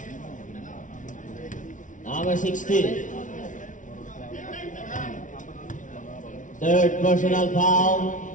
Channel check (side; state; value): right; late; 0.37 ms